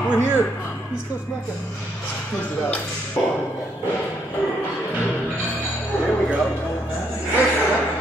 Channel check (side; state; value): both; normal; correlation 0.73